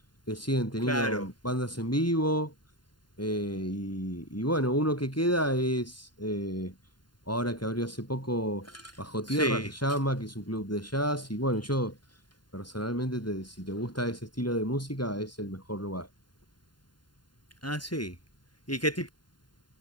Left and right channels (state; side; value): late; right; 0.71 ms